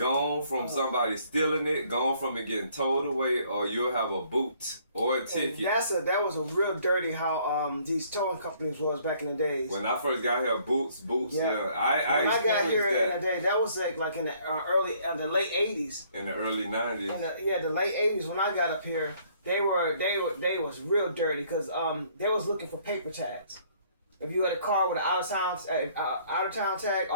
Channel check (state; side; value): inverted; both; correlation -0.62